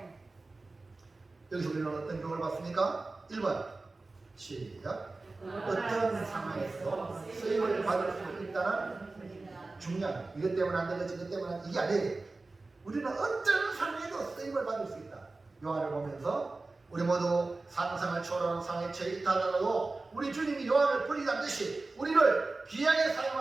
여기서 우리는 어떤 교훈을 봤습니까? 1번 시작. 어떤 상황에서 쓰임을 받을 수 있다는 중요한, 이것 때문에 안 되겠지, 이것 때문에 이게 아니에요. 우리는 어떤 상황에도 쓰임을 받을 수 있다. 요한을 보면서 우리 모두 상상을 초월하는 상황에 처해 있다더라도 우리 주님이 요한을 버리지 않듯이 우리를 귀하게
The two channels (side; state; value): left; quieter; 3.4 dB